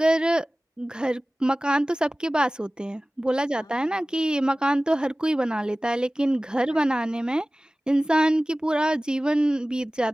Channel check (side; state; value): both; normal; correlation 0.97